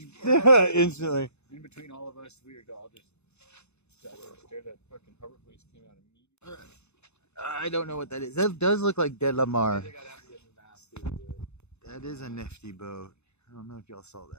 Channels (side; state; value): right; late; 0.81 ms